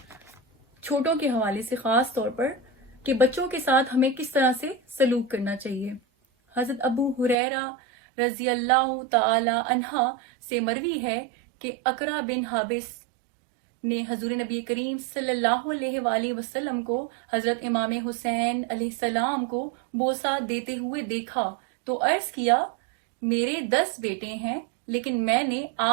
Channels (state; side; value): drops out; left; at 7.4 s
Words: چھوٹوں کے حوالے سے خاص طور پر کہ بچوں کے ساتھ ہمیں کس طرح سے سلوک کرنا چاہیے۔ حضرت ابو ہریرہ رضی اللہ تعالی عنہ سے مروی ہے کہ اقرا بن حابس نے حضور نبی کریم صلی اللہ علیہ وآلہ وسلم کو حضرت امام حسین علیہ السلام کو بوسہ دیتے ہوئے دیکھا تو عرض کیا، میرے 10 بیٹے ہیں لیکن میں نے